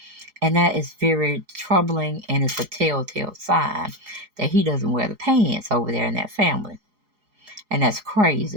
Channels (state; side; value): late; left; 4.8 ms